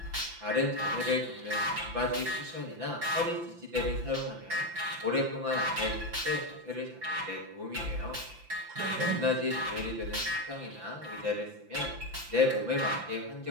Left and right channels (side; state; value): left; late; 5.8 ms